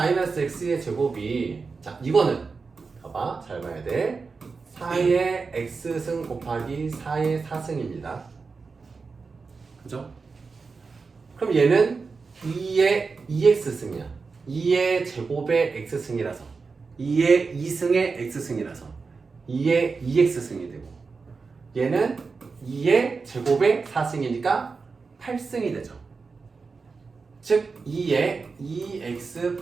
x의 제곱이, 자, 이거는 봐봐, 잘 봐야 돼. 4의 x승 곱하기 4의 4승입니다. 그죠? 그럼 얘는 2의 2x승이야. 2의 제곱의 x승이라서, 2의 2승의 x승이라서 2의 2x승이 되고, 얘는 2의 제곱의 4승이니까 8승이 되죠. 즉 2의 2x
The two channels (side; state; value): left; quieter; 4.6 dB